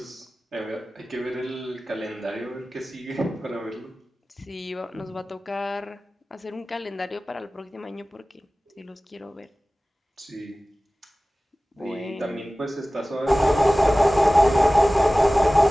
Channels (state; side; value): normal; both; correlation 0.97